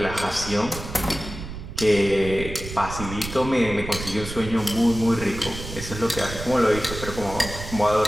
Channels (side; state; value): right; noise; rumble, 10 dB below the sound